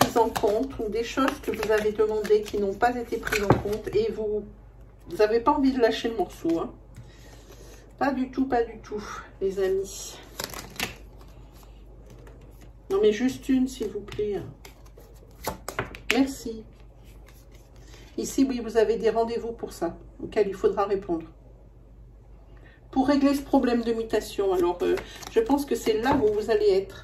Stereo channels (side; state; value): both; identical; correlation 1.00